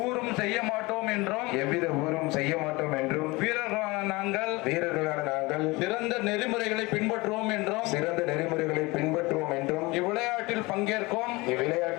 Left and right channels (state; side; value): quieter; right; 23.3 dB